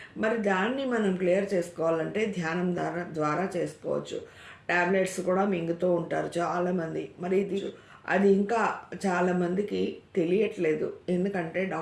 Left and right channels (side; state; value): both; identical; correlation 1.00